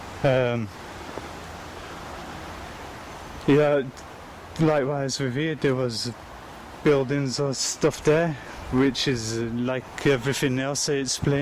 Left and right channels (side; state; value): both; identical; correlation 1.00